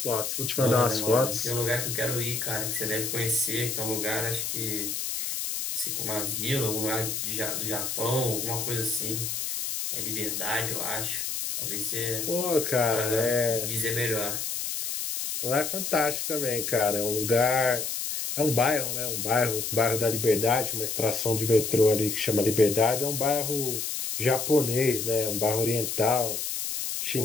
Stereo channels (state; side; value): noise; left; hiss, 3 dB below the sound